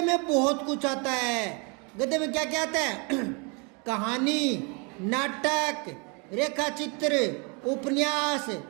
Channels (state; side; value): quieter; left; 32.7 dB